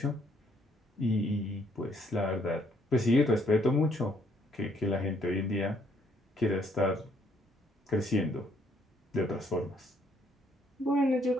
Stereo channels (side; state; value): both; normal; correlation 0.68